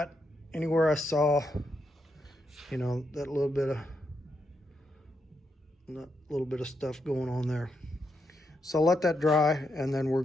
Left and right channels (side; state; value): both; normal; correlation 0.82